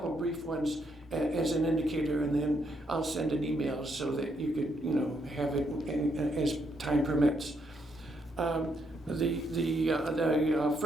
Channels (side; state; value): both; normal; correlation 0.76